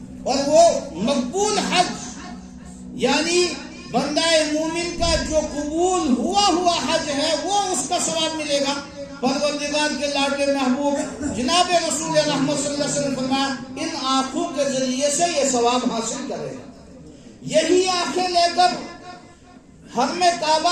اور وہ مقبول حج یعنی بندہ مومن کا جو قبول ہوا حج ہے وہ اس کا ثواب ملے گا۔ پروردگار کے لاڈلے محبوب جناب رسول رحمت صلی اللہ علیہ وسلم فرمایا ان آنکھوں کے ذریعے سے یہ ثواب حاصل کرے گا۔ یہی آنکھیں لے کر حرم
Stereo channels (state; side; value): identical; both; correlation 1.00